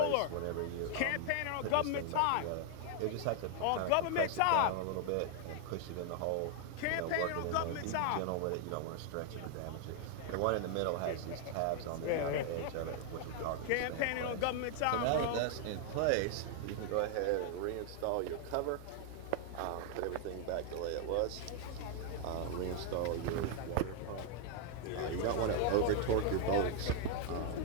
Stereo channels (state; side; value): different; both; correlation 0.00